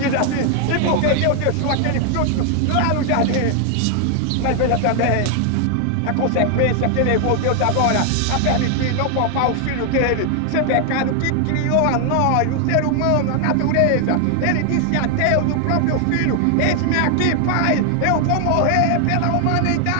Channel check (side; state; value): both; different; correlation 0.00